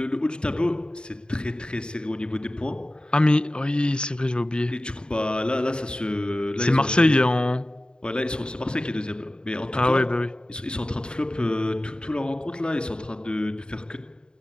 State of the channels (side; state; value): right; late; 0.049 ms